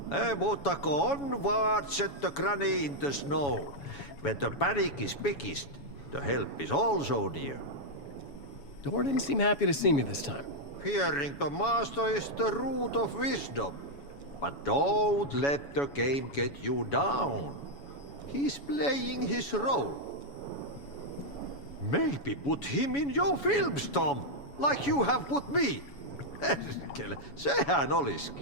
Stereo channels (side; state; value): right; late; 7.1 ms